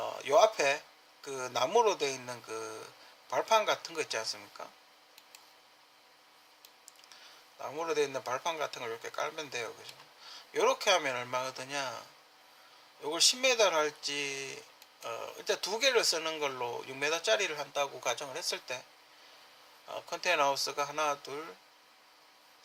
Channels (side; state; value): both; identical; correlation 1.00